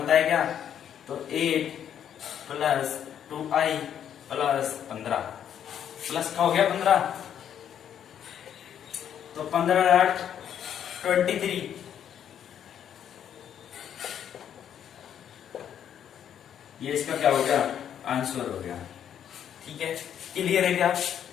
है क्या, तो 8 प्लस 2i प्लस 15, प्लस का हो गया 15, तो 15 8 23, ये इसका क्या हो गया आंसर हो गया। ठीक है, क्लियर है क्या?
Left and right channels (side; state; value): right; quieter; 9.4 dB